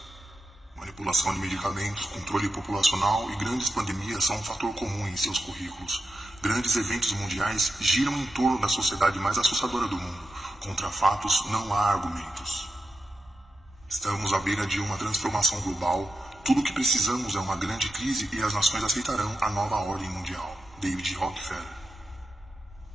Manipulação de medicamentos, controle populacional e grandes pandemias são um fator comum em seus currículos. Grandes eventos mundiais giram em torno da sociedade mais assustadora do mundo. Contra fatos não há argumentos. Estamos à beira de uma transformação global. Tudo o que precisamos é uma grande crise e as nações aceitarão a nova ordem mundial. David Rockefeller.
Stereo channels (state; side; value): normal; both; correlation 0.88